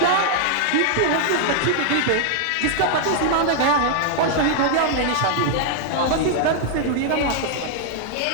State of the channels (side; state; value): both; different; correlation 0.00